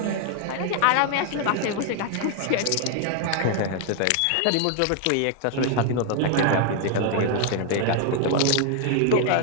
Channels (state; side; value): different; both; correlation 0.00